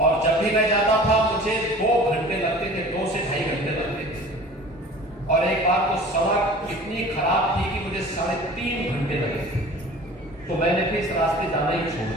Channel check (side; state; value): both; normal; correlation 0.43